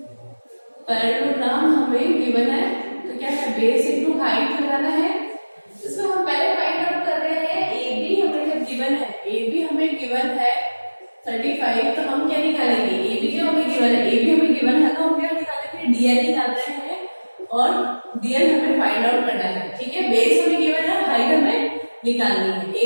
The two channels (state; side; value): inverted; both; correlation -1.00